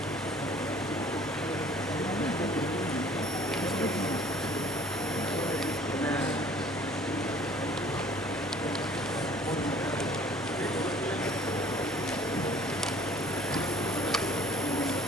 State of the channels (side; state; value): both; normal; correlation 0.53